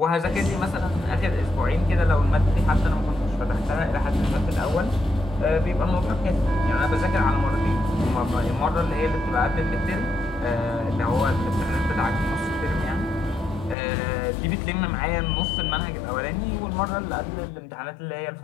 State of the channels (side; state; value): right; drops out; at 13.8 s